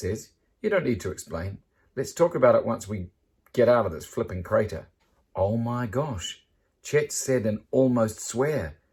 You don't need to explain. Let's talk about it once we get out of this flipping crater. Oh my gosh, Chet said and almost swear.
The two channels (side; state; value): both; identical; correlation 1.00